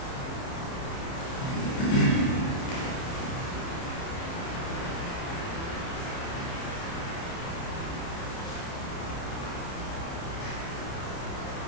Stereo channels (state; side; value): late; right; 30 ms